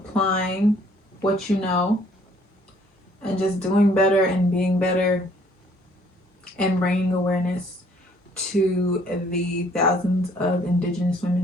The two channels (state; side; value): normal; both; correlation 0.61